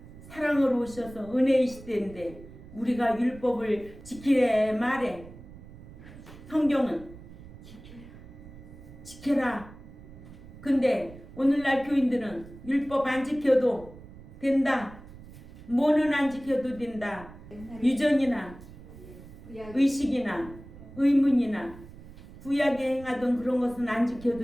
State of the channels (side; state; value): right; noise; rumble, 17 dB below the sound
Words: 사랑으로 오셔서 은혜의 시대인데 우리가 율법을 지키래 말해. 성경은 지켜라. 근데 오늘날 교인들은 율법 안 지켜도 된다. 뭐는 안 지켜도 된다. 유전이나 의식이나 의문이나 구약에 행하던 그런 것은 안